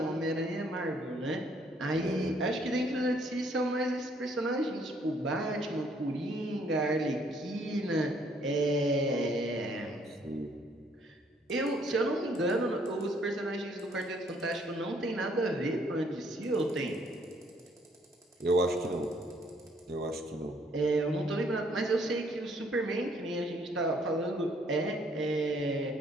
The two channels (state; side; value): normal; both; correlation 0.65